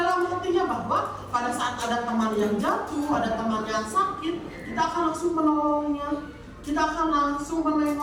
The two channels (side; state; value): both; identical; correlation 1.00